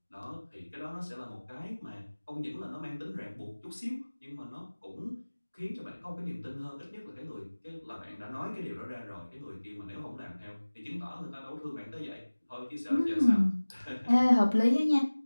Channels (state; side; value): inverted; both; correlation -1.00